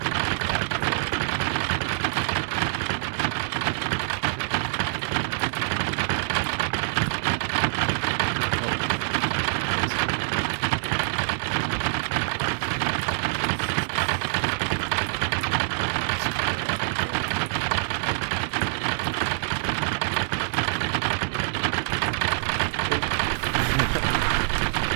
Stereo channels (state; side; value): silent; left; digital silence